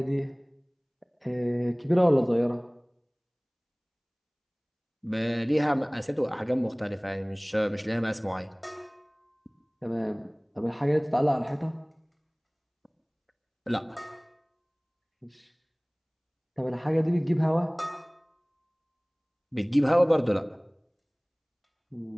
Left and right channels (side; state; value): both; identical; correlation 1.00